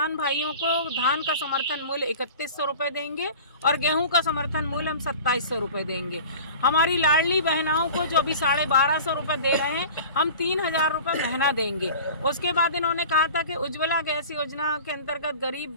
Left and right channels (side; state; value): both; inverted; correlation -0.39